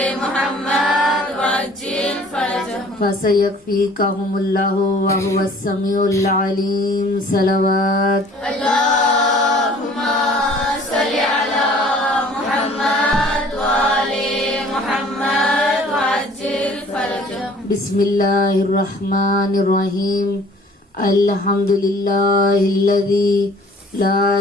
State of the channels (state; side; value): normal; both; correlation 0.52